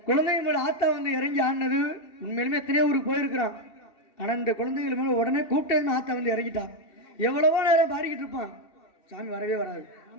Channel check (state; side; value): late; right; 2.6 ms